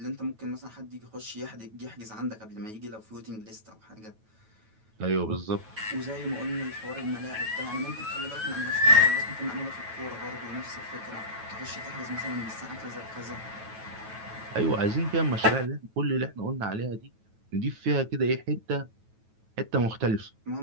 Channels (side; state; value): left; late; 9.2 ms